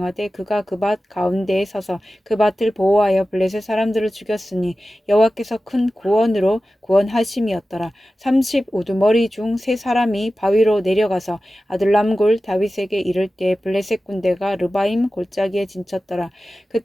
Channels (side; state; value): both; normal; correlation 0.95